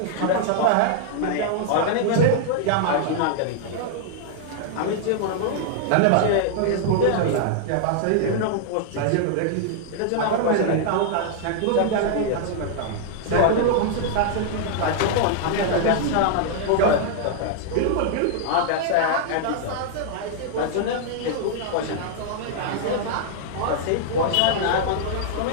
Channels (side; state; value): both; different; correlation -0.01